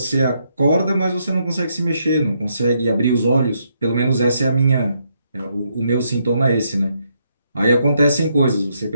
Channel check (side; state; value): both; inverted; correlation -0.77